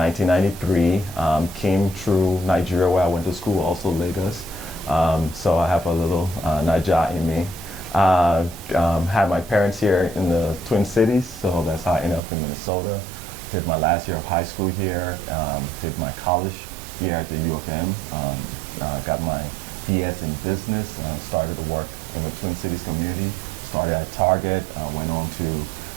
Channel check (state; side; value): drops out; left; at 12.2 s